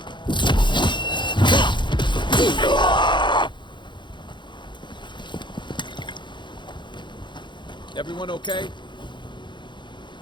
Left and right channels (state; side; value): late; right; 0.23 ms